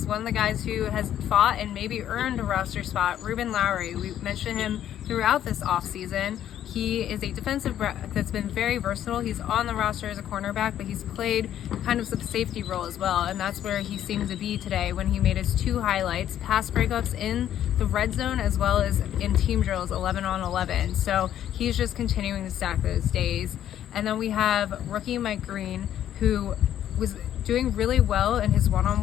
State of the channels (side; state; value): right; quieter; 11.0 dB